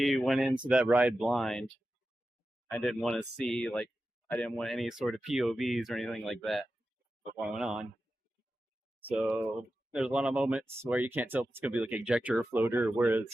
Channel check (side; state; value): both; normal; correlation 0.92